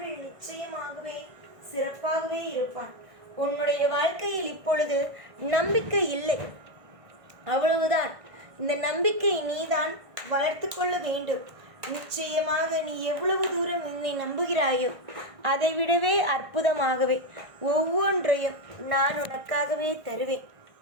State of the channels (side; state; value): left; late; 1.6 ms